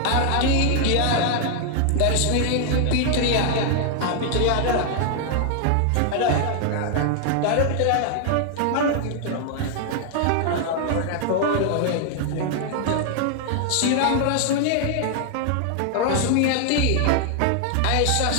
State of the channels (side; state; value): both; different; correlation 0.00